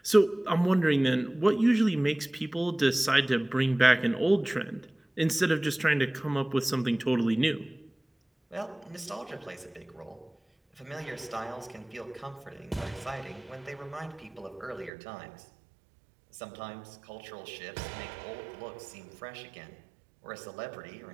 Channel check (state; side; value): drops out; left; at 14.9 s